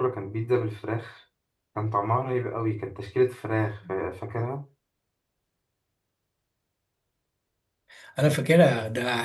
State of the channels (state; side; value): identical; both; correlation 1.00